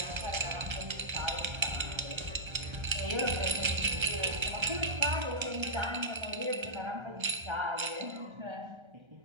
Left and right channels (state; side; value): late; left; 1.3 ms